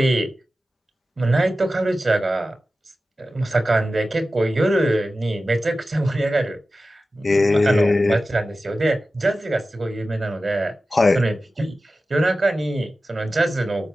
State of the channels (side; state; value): both; normal; correlation 0.94